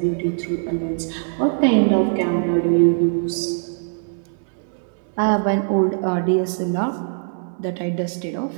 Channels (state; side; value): silent; left; 64 dB below the other